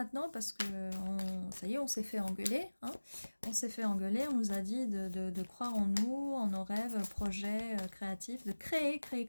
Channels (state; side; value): inverted; both; correlation -1.00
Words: Parce que ça y est, on s'est fait engueuler. Hein, on s'est fait engueuler, on nous a dit de croire en nous, en nos rêves, projets créatifs, de créer.